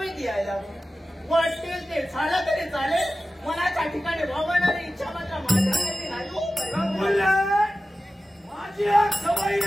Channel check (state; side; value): normal; both; correlation 0.95